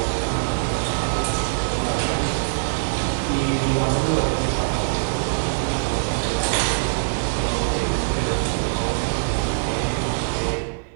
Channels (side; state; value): left; quieter; 38.4 dB